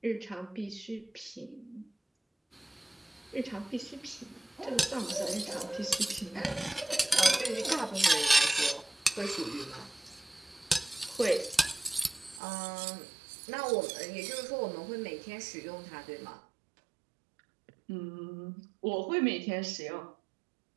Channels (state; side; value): drops out; left; at 12.4 s